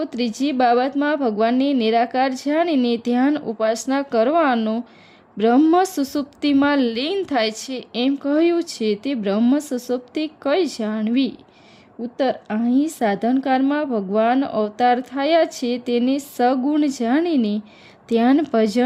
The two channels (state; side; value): identical; both; correlation 1.00